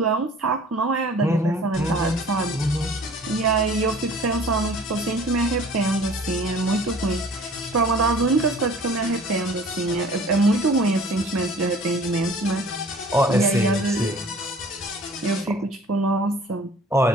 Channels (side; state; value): both; normal; correlation 0.48